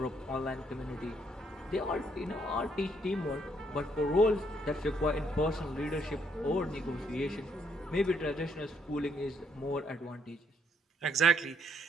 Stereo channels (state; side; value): normal; both; correlation 0.71